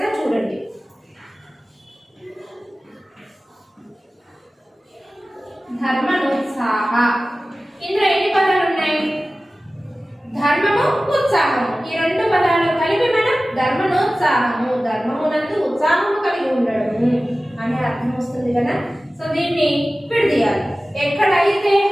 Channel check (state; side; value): normal; both; correlation 0.96